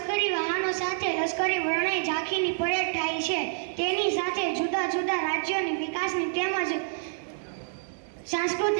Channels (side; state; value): left; silent; digital silence